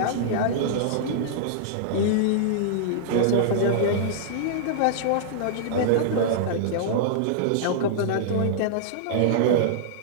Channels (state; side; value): different; both; correlation -0.02